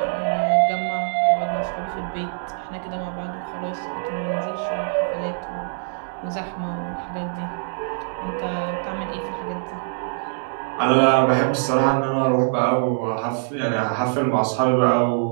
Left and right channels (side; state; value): left; silent; digital silence